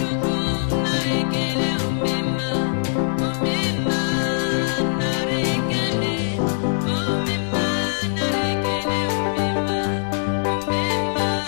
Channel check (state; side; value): silent; right; 64 dB below the other